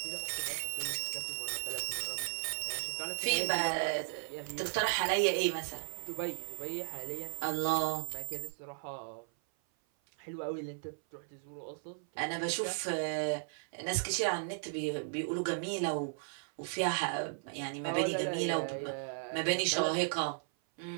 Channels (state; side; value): silent; left; 54 dB below the other